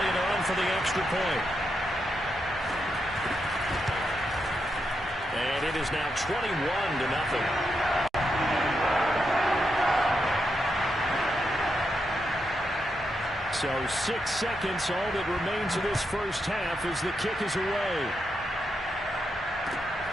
on for the extra point. And it is now 21-0. So 6 seconds, all that remains of this first half as the kick is away.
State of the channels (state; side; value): normal; both; correlation 0.83